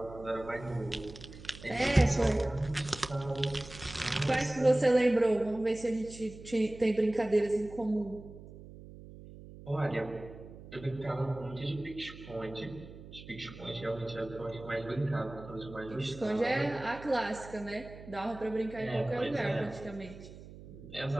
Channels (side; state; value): right; noise; hum, 16 dB below the sound